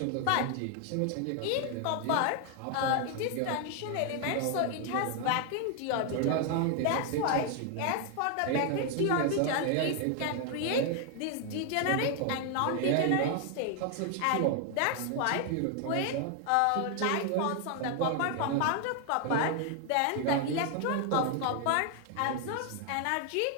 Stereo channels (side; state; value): both; different; correlation 0.00